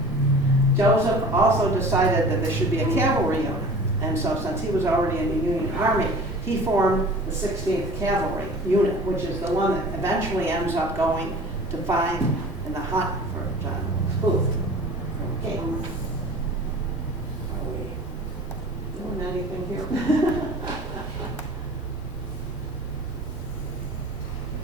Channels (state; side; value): normal; both; correlation 0.42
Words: Joseph also decided that there should be a cavalry unit. And so since he was already in the Union Army, he formed the 16th Cavalry Unit, which is the one that eventually ends up going to fight in the hunt for John Wilkes Booth from King. Are we doing anything here?